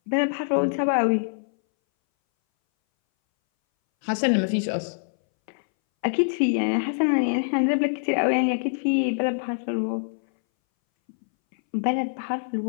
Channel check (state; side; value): silent; right; 61 dB below the other